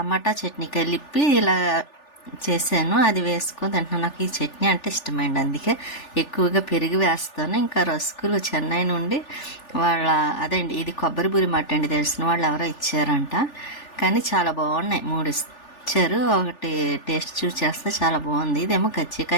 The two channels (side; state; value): right; late; 3.4 ms